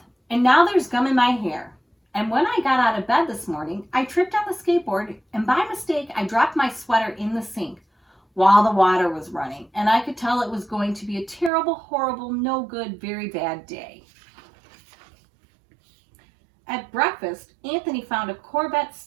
and now there's gum in my hair. And when I got out of bed this morning, I tripped on the skateboard, and by mistake, I dropped my sweater in the sink while the water was running, and I could tell it was going to be a terrible, horrible, no good, very bad day. At breakfast, Anthony found a Corvette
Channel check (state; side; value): drops out; left; at 11.5 s